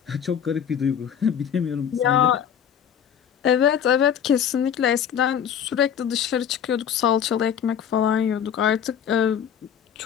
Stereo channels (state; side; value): quieter; right; 8.6 dB